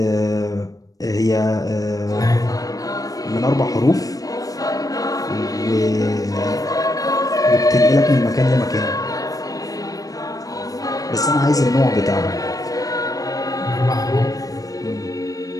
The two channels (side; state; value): right; late; 0.17 ms